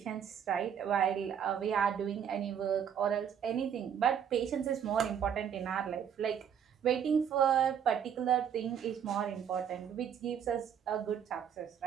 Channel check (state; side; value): quieter; left; 8.3 dB